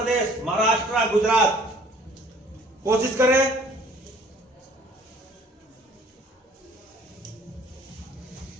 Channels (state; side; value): normal; both; correlation 0.54